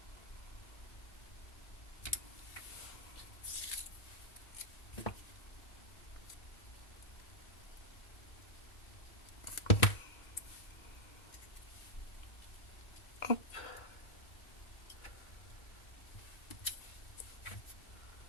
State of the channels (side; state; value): right; late; 1.9 ms